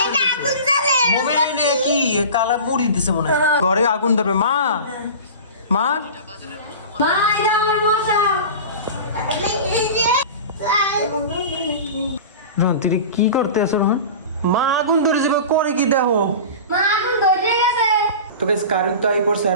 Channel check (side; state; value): both; inverted; correlation -0.34